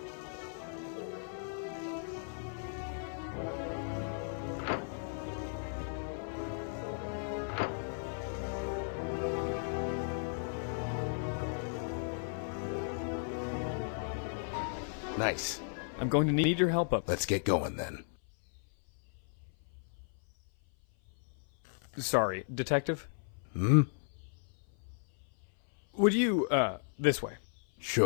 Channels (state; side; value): silent; right; 54 dB below the other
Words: Nice. I'm going to need your help up. Let's get going then. Sorry, Detective? Hmm? Would you, this way.